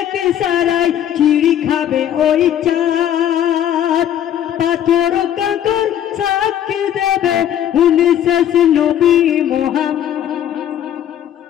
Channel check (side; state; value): right; quieter; 10.5 dB